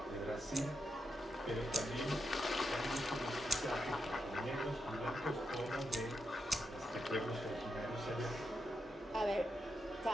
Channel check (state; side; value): normal; both; correlation 0.84